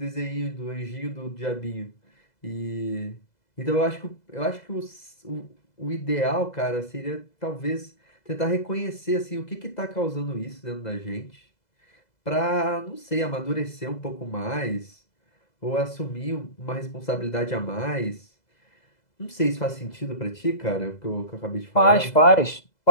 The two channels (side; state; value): right; late; 2.0 ms